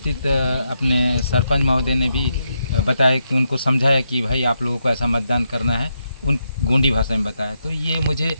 अपने सरपंच महोदय ने भी बताया कि उनको समझाया कि भाई आप लोगों को ऐसा मतदान करना है, उन गोंडी भाषा में बताया। तो ये मुझे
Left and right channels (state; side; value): inverted; both; correlation -0.82